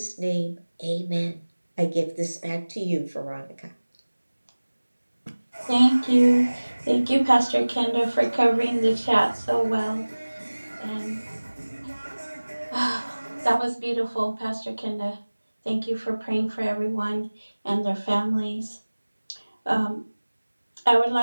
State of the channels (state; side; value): inverted; both; correlation -1.00